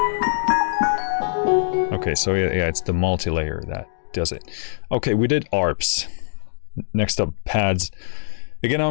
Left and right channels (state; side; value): silent; right; digital silence